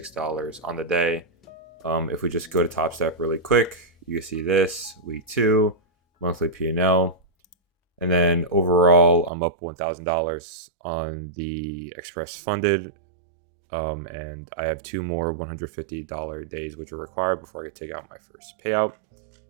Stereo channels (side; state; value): left; drops out; at 9.3 s